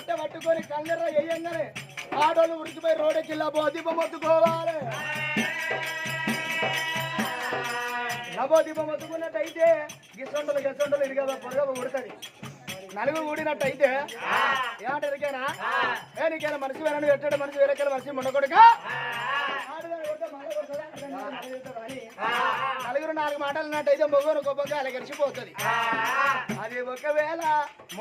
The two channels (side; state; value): both; identical; correlation 1.00